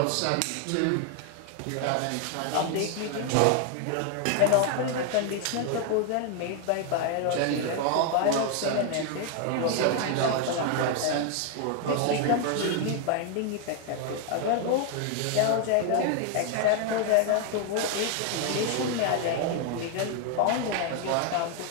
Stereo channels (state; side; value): different; both; correlation 0.00